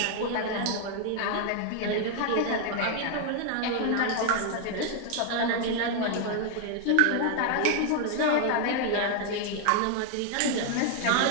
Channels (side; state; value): both; different; correlation 0.00